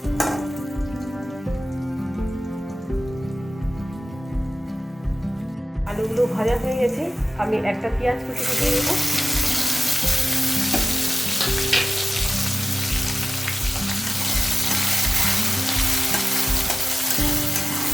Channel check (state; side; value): normal; both; correlation 0.96